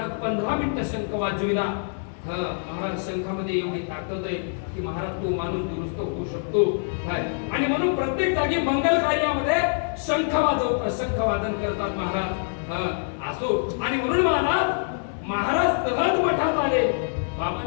15 मिनिटं शंख वाजविला. महाराज शंखामध्ये एवढी ताकद आहे की महाराज तो माणूस दुरुस्त होऊ शकतो. काय आणि म्हणून प्रत्येक जागी मंगल कार्यामध्ये शंख वाजवतात, शंख वादन करतात महाराज. असो आणि म्हणून महाराज सहज मठात आले.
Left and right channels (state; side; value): silent; right; digital silence